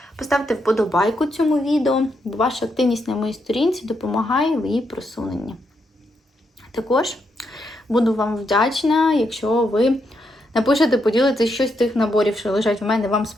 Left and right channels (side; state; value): both; normal; correlation 0.80